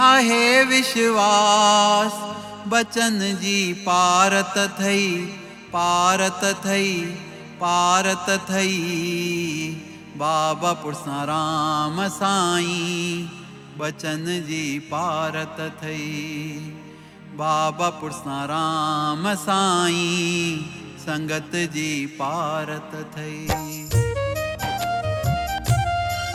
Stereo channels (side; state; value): both; identical; correlation 1.00